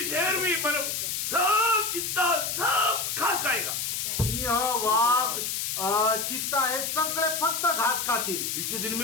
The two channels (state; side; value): noise; left; hiss, 2 dB below the sound